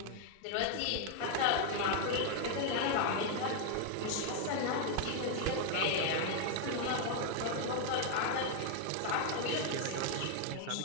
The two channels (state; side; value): different; both; correlation 0.01